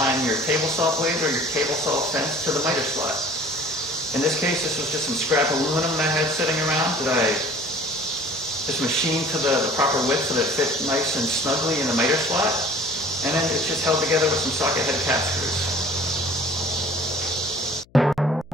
your table saw blade or your table saw fence to the miter slot. In this case, this was just some scrap aluminum that I had sitting around that I just machined to the proper width so that it fit nice and snugly in the miter slot. And then it's just held together with some socket head cap screws.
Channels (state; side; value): noise; left; hum, 29 dB below the sound